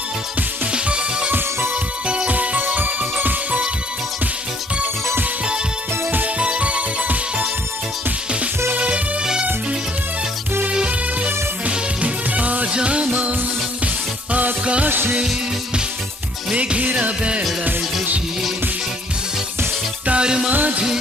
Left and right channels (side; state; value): both; normal; correlation 0.62